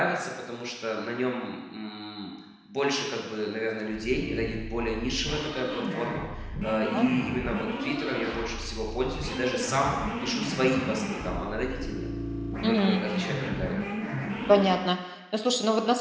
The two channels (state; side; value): identical; both; correlation 1.00